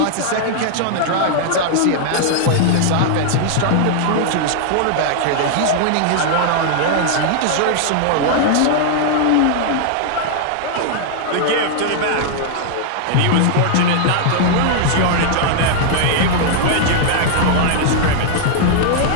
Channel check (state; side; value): different; both; correlation -0.01